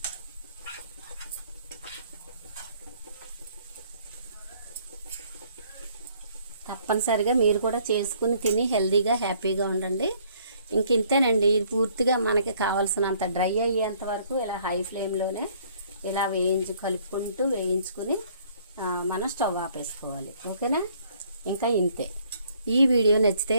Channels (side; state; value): both; inverted; correlation -0.62